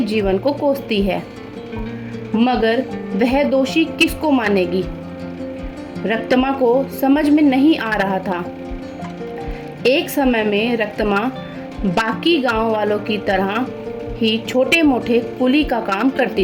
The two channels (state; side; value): identical; both; correlation 1.00